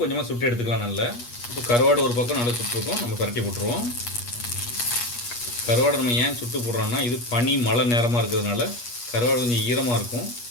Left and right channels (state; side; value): late; right; 8.3 ms